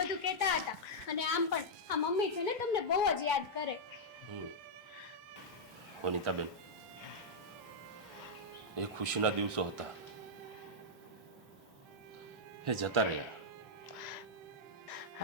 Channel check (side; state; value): both; normal; correlation -0.07